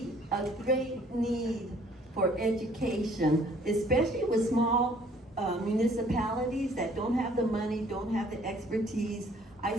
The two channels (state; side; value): normal; both; correlation 0.58